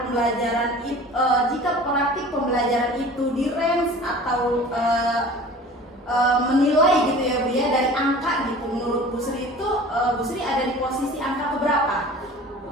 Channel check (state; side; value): normal; both; correlation 0.42